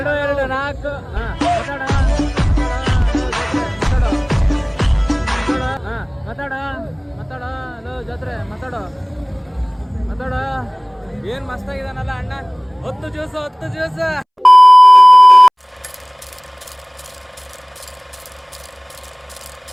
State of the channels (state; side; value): identical; both; correlation 1.00